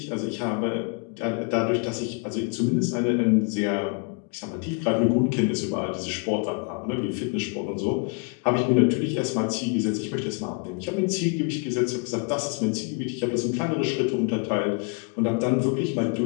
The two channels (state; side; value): quieter; right; 35.2 dB